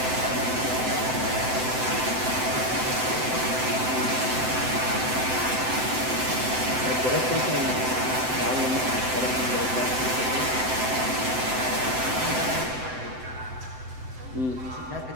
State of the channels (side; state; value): left; late; 7.8 ms